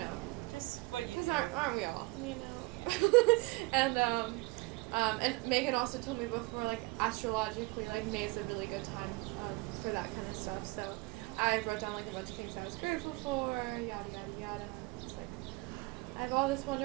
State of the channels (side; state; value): left; quieter; 24.5 dB